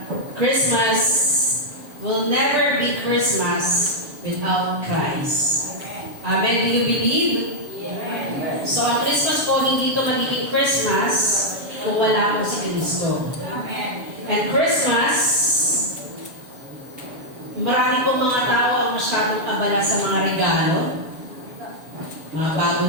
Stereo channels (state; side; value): late; left; 7.1 ms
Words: Christmas will never be Christmas without Christ. Amen. Do you believe? Yes. So ang Christmas po, hindi ito magiging Christmas kung wala po si Cristo. Amen. And Christmas, marami po mga tao ang masyadong abala sa mga regalo, mga